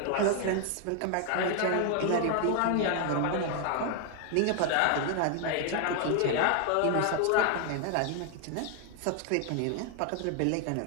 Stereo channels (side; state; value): both; different; correlation 0.00